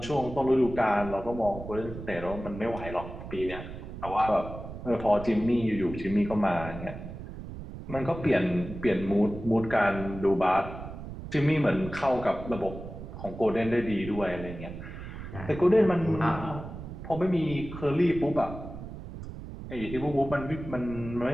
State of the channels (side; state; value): right; noise; rumble, 11 dB below the sound